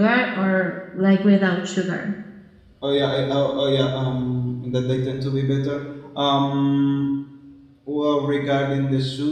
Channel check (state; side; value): identical; both; correlation 1.00